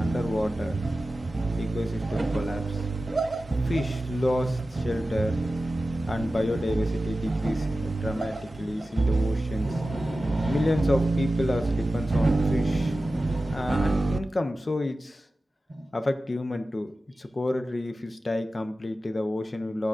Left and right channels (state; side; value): normal; both; correlation 0.94